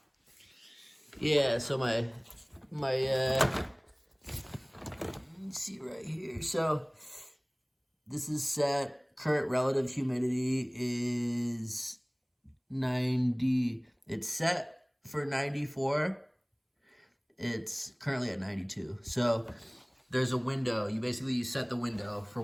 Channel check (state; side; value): identical; both; correlation 1.00